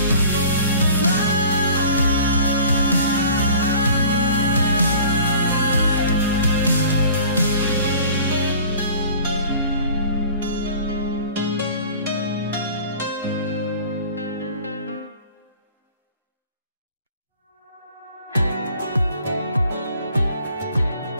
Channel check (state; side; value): inverted; both; correlation -0.47